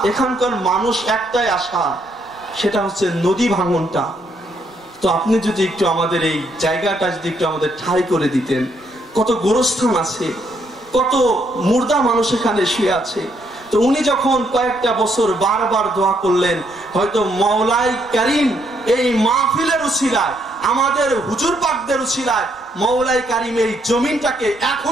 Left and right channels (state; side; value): normal; both; correlation 0.73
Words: এখানকার মানুষ একটাই আশা, সেটা হচ্ছে নদী ভাঙনটা, তো আপনি যদি একটু আমাদের এই জায়গাটা যদি একটু আমাদের ঠাঁই করে দিতেন, কত গোরস্থান আছে, কত মুর্দা মানুষ এখানে শুয়ে আছে। তো উনি যখন কয়েকটা বছর বারবার দোয়া করলেন, হয়তো মওলাই কারীম এই মাহফিলের উসিলায়, আমাদের হুজুর পাকদের উসিলায় মওলাই কারীম এই জমিনটাকে